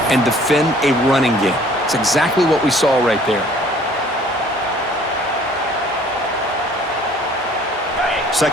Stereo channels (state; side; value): normal; both; correlation 0.55